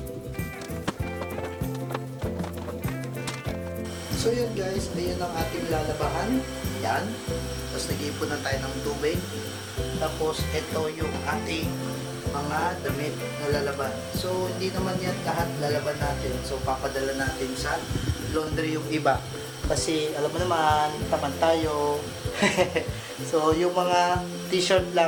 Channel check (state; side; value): identical; both; correlation 1.00